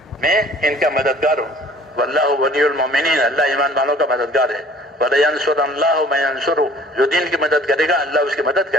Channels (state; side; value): normal; both; correlation 0.51